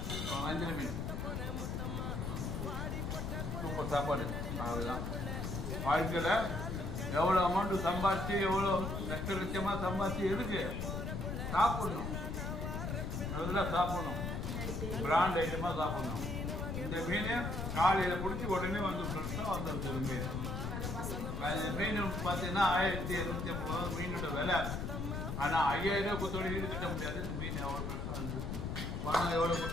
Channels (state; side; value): noise; left; rumble, 3 dB below the sound